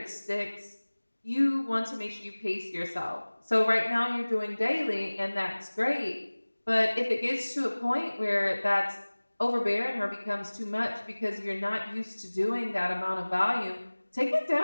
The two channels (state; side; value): inverted; both; correlation -1.00